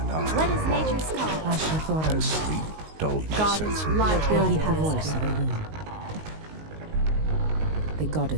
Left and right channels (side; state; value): left; late; 19 ms